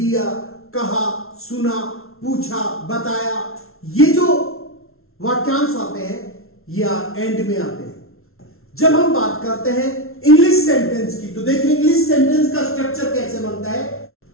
कहा, सुना, पूछा, बताया, ये जो वाक्यांश आते हैं या एंड में आते हैं। जब हम बात करते हैं इंग्लिश सेंटेंस की तो देखिए इंग्लिश सेंटेंस का स्ट्रक्चर कैसे बनता है।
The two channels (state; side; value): late; right; 0.62 ms